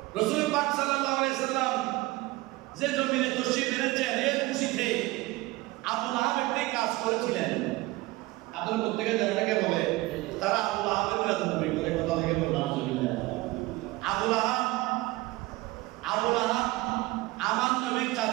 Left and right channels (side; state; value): left; quieter; 20.4 dB